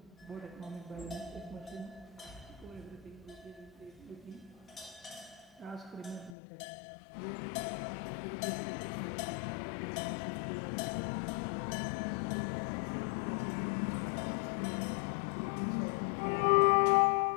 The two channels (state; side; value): drops out; right; at 6.4 s